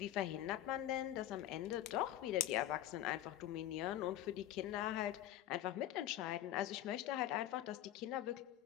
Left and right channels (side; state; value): right; quieter; 13.1 dB